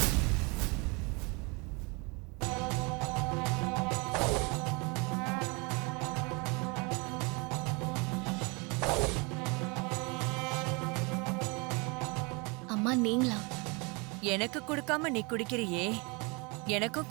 அம்மா நீங்களா? எனக்கு கொடுக்காம நீ குடிக்கிறியே, எனக்கும்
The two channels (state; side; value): quieter; left; 29.2 dB